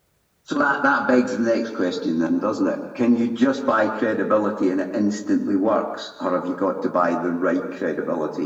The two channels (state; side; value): identical; both; correlation 1.00